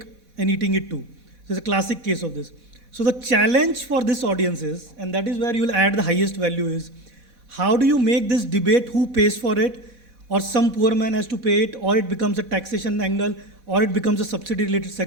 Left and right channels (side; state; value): left; late; 4.1 ms